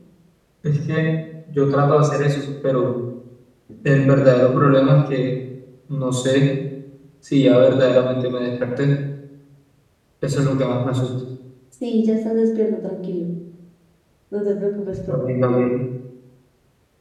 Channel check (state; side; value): identical; both; correlation 1.00